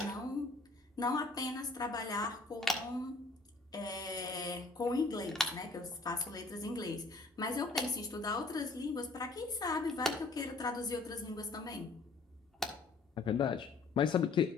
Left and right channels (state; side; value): quieter; right; 3.6 dB